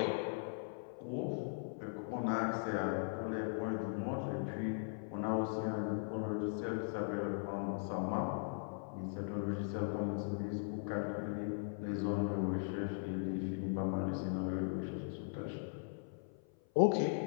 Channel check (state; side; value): silent; right; 52 dB below the other